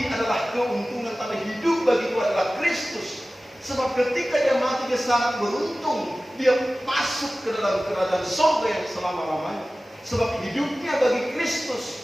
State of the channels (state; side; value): normal; both; correlation 0.96